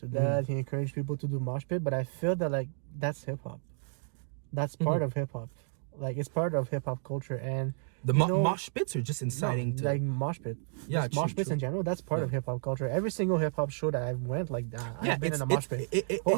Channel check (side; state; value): left; silent; digital silence